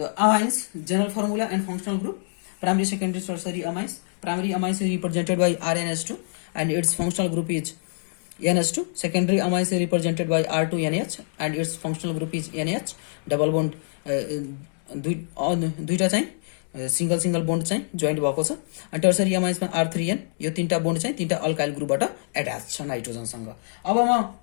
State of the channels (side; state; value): right; silent; digital silence